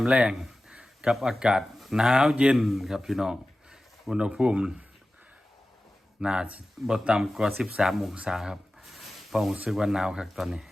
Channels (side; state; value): both; normal; correlation 0.96